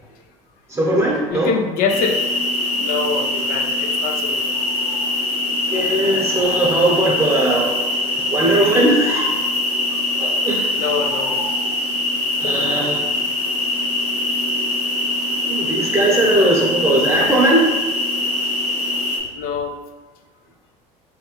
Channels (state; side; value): normal; both; correlation 0.33